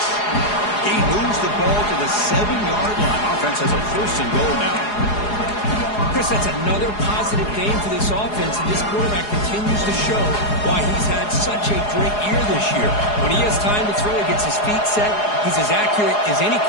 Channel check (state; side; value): late; right; 4.8 ms